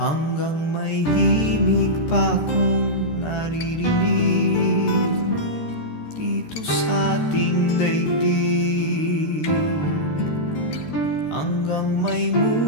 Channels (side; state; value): right; late; 13 ms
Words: may himig pa akong naririnig dito sa ating daigdig, hanggang may